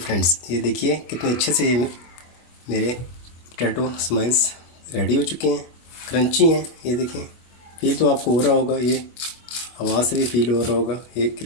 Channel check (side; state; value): right; late; 24 ms